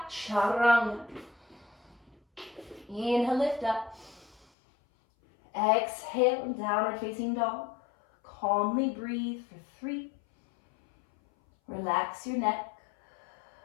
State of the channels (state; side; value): drops out; right; at 4.5 s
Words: chaturanga. Inhale, lift up. Exhale, downward facing dog. Calmly breathe for 3. Relax your neck.